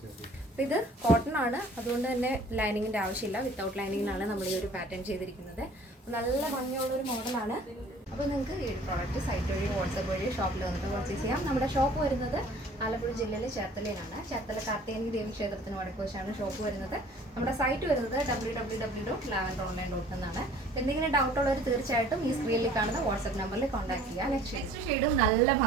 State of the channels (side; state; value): both; normal; correlation 0.51